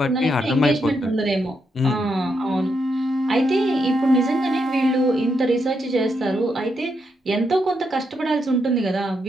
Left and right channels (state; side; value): normal; both; correlation 0.81